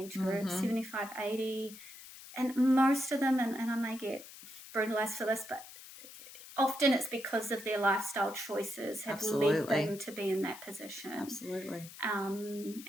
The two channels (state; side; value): noise; left; hiss, 16 dB below the sound